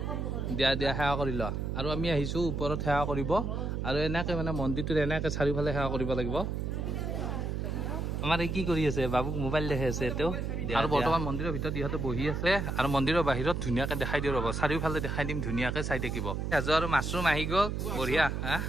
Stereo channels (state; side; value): noise; right; hum, 2 dB below the sound